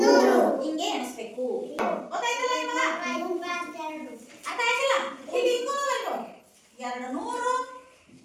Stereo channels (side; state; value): both; identical; correlation 1.00